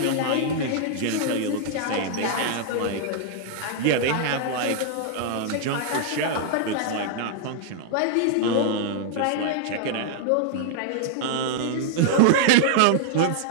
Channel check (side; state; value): both; different; correlation -0.01